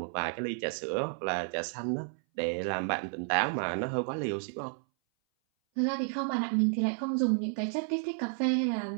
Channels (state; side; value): silent; left; 57 dB below the other